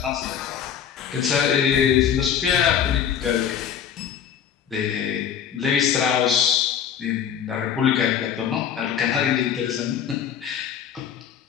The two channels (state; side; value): quieter; right; 8.6 dB